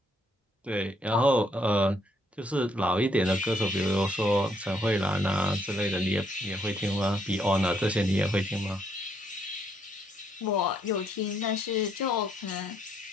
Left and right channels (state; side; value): normal; both; correlation 0.71